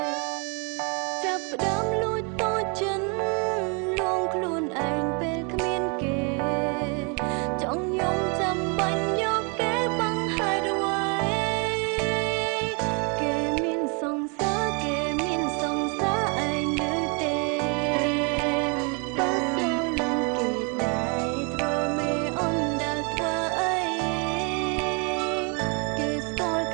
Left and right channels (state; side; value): quieter; left; 34.8 dB